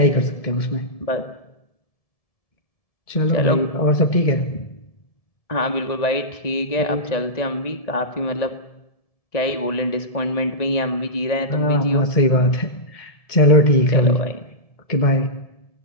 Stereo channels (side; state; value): right; late; 1.7 ms